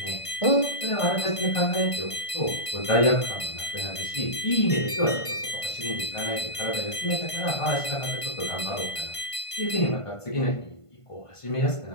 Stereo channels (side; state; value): right; late; 1.5 ms